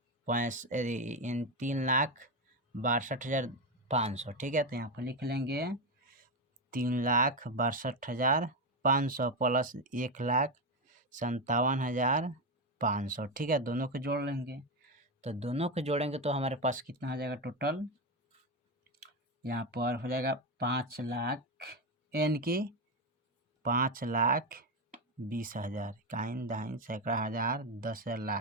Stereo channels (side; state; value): both; normal; correlation 0.12